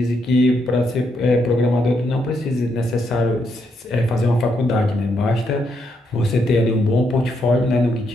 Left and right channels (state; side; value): normal; both; correlation 0.78